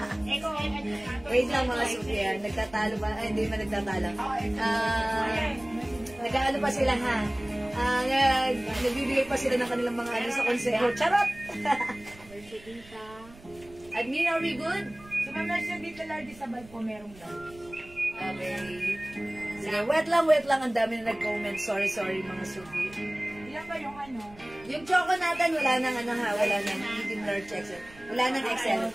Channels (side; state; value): right; noise; rumble, 22 dB below the sound